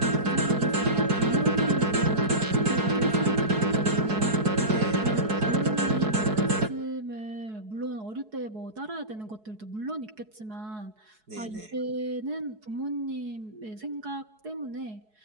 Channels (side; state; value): left; late; 4.7 ms